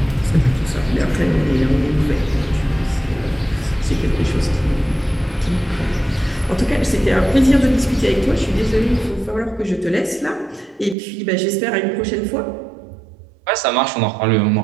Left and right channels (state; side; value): drops out; left; at 11.0 s